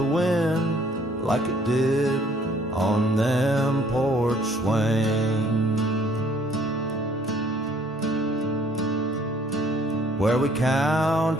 wind like it did on them porch swings, where we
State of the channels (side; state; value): both; normal; correlation 0.60